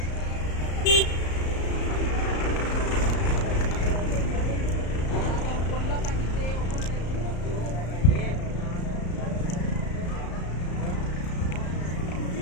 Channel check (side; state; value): right; late; 34 ms